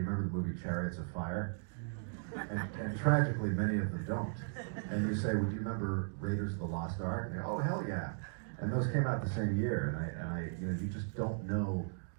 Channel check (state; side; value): silent; left; digital silence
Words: remember the movie Chariots of Fire?" And tragically, many of them don't. And you say, well, do you remember Raiders of the Lost Ark? And they go, oh, hell yeah. And those came out the same year, and I, you know, you just don't know